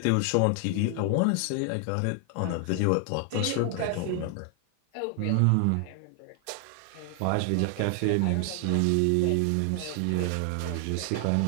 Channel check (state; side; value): different; both; correlation 0.00